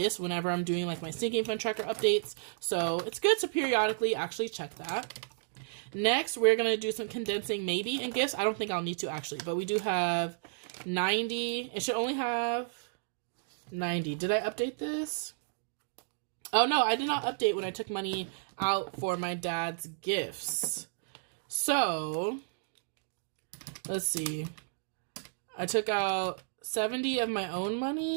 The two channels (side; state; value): left; silent; digital silence